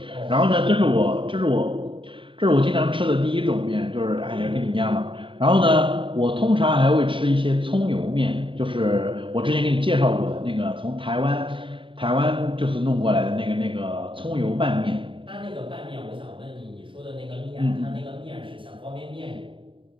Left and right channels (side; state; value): left; late; 0.25 ms